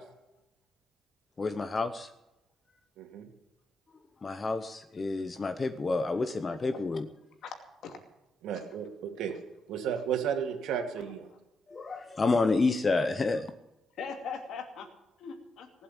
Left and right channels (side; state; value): both; normal; correlation 0.82